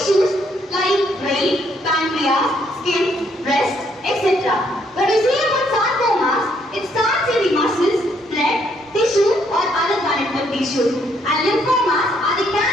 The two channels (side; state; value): both; normal; correlation 0.70